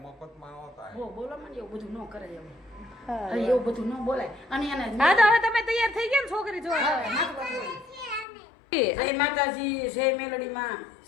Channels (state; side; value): drops out; right; at 8.2 s